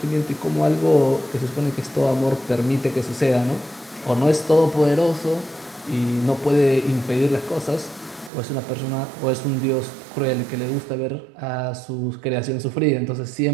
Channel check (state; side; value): drops out; left; at 8.3 s